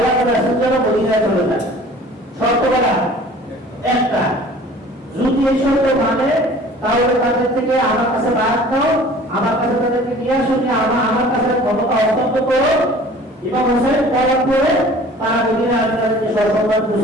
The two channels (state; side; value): normal; both; correlation 0.47